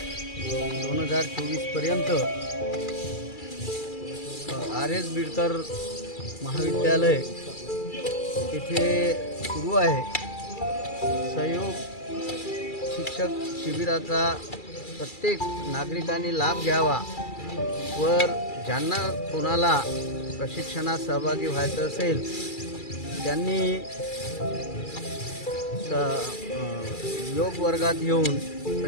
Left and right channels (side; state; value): right; late; 2.3 ms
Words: 2024 पर्यंत RS बिडकर महाविद्यालय येथे सुरू आहे। सहयोग शिक्षक शिबिराचा प्रत्येक नागरिकांनी लाभ घ्यावा व ज्यांना कोणाला प्रशिक्षणात सहभागी व्हायचं असेल त्यांनी योग वर्गात येऊन